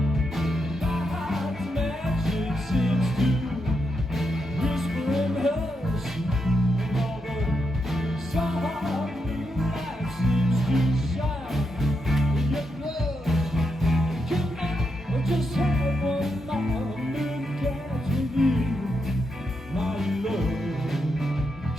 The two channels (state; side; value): normal; both; correlation 0.83